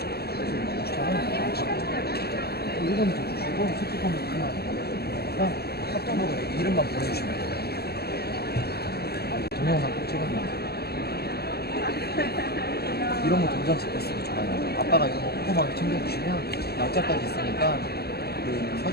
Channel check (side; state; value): right; late; 0.46 ms